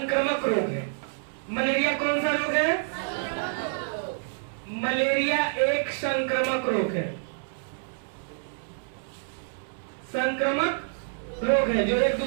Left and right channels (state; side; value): silent; left; 60 dB below the other